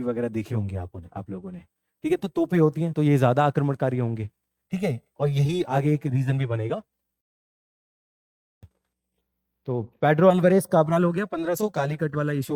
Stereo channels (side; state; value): both; identical; correlation 1.00